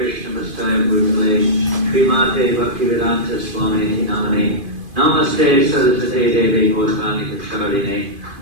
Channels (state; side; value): late; left; 2.5 ms